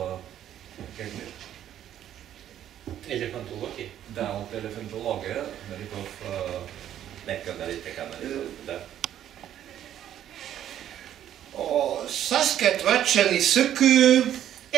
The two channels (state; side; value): quieter; left; 11.0 dB